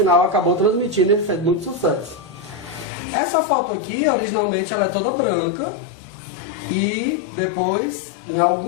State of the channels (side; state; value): right; drops out; at 2.9 s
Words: acabou transmitindo, ele fez muito sucesso. Essa foto aqui, originalmente, ela é toda branca, e depois, em